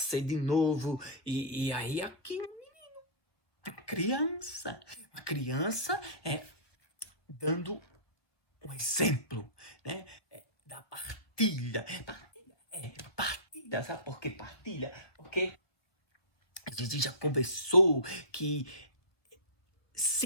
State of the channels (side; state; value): right; late; 1.4 ms